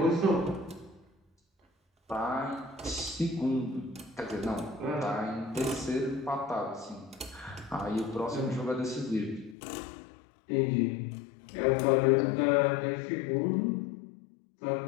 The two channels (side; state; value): right; drops out; at 9.6 s